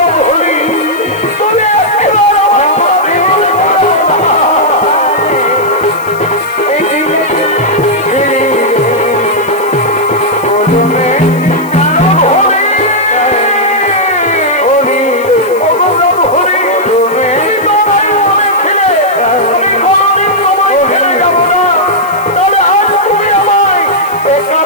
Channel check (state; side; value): noise; left; hiss, 21 dB below the sound